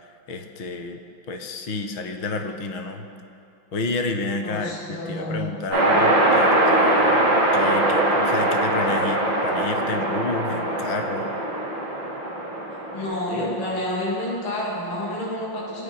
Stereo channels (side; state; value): right; late; 5.8 ms